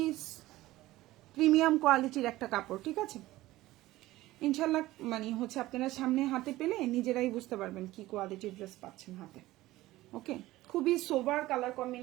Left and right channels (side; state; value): left; quieter; 17.1 dB